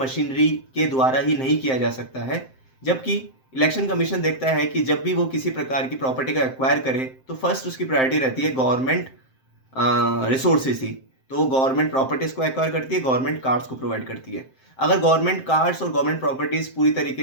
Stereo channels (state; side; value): late; right; 7.7 ms